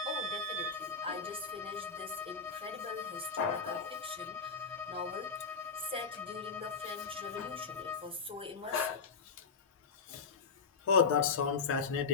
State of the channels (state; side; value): quieter; right; 5.1 dB